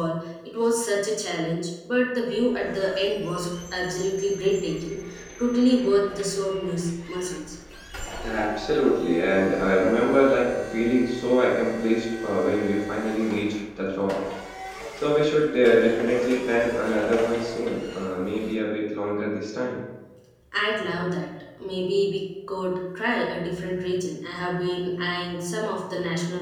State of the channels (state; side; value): identical; both; correlation 1.00